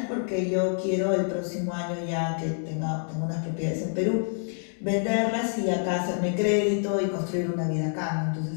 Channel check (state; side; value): silent; right; 56 dB below the other